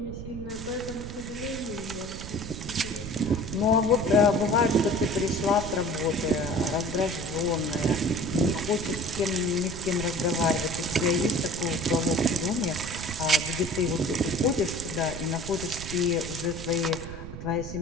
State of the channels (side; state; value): right; noise; rumble, 10 dB below the sound